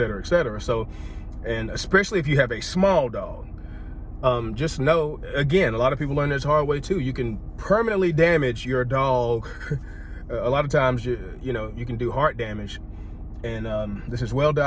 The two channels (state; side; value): identical; both; correlation 1.00